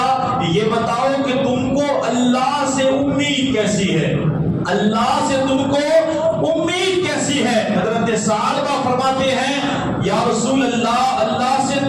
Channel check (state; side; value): identical; both; correlation 1.00